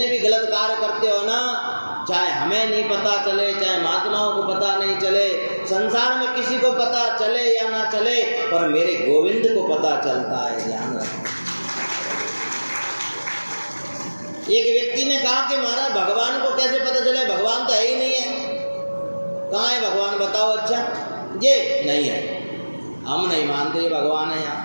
भी गलत कार्य करते हो ना, चाहे हमें नहीं पता चले, चाहे महात्माओं को पता नहीं चले, संसार में किसी को पता चले या ना चले, पर मेरे गोविंद को पता चलता है, ध्यान रखना। एक व्यक्ति ने कहा कि महाराज भगवान को कैसे पता चले, भगवान तो है ही नहीं है। कहाँ है भगवान बताओ? अच्छा ये नहीं है, हम नहीं मानते भगवान है यहाँ।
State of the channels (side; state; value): both; inverted; correlation -1.00